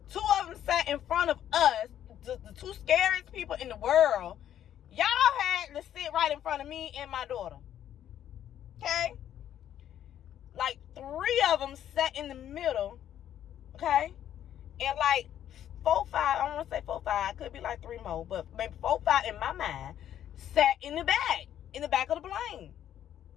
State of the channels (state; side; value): quieter; right; 10.7 dB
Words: Two of them sat in front of us, the two scariest people in the world. Y'all had to sit right in front of me and my daughter. Okay? Like 3 of them sat in the middle. Okay? And like 4, 5, I don't want to say 4, 5, could be like 3 more, but maybe 4, 5 in my mind sat in the back of the plane.